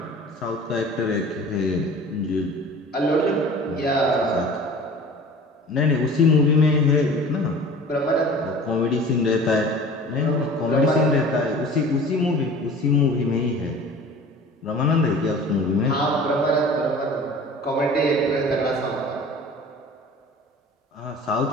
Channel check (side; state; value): both; normal; correlation 0.43